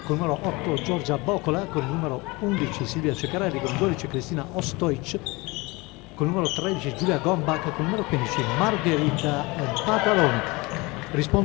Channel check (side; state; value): right; quieter; 24.3 dB